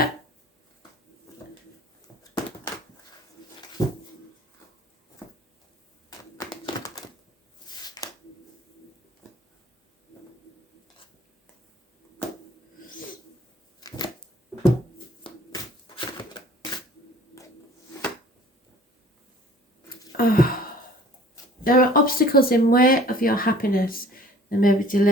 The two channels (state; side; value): normal; both; correlation 0.51